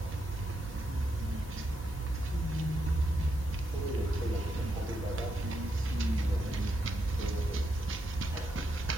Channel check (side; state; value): both; normal; correlation 0.82